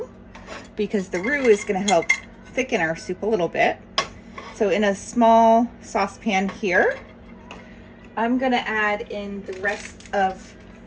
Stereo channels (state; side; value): identical; both; correlation 1.00